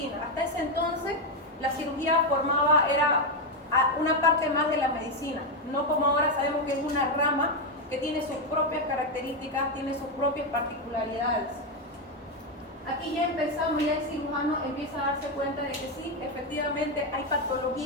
Hasta ese entonces, la cirugía era una parte más de la medicina, no como ahora sabemos que es una rama que tiene sus propias características, tiene sus propias particularidades. Aquí ya el cirujano empieza a darse cuenta de que sí, efectivamente hay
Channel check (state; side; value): normal; both; correlation 0.06